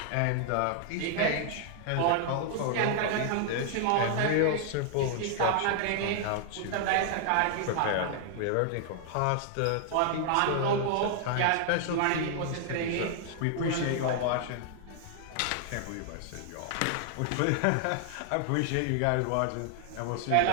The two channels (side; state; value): both; different; correlation 0.00